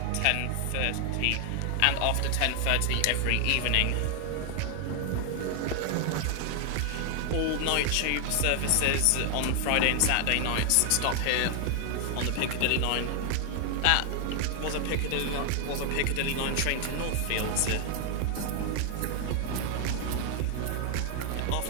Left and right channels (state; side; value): different; both; correlation 0.00